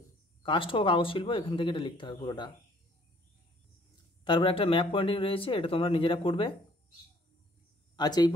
কাষ্ঠ ও কাগজ শিল্প, এখান থেকে এটা লিখতে হবে পুরোটা। তারপর একটা ম্যাপ পয়েন্টিং রয়েছে, এটা তোমরা নিজেরা করবে। আচ্ছা, এই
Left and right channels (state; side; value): normal; both; correlation 0.60